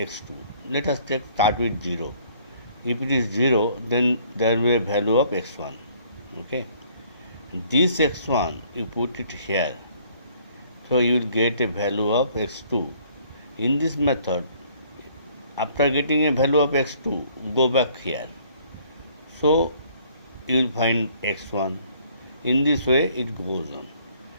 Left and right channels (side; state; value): both; inverted; correlation -0.60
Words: Let us start with 0. If it is 0, then there will be a value of x1. Okay. This x1 you put it here, so you will get a value of x2. In this method, after getting a value of x2, go back here, so you will find x1. In this way it goes on.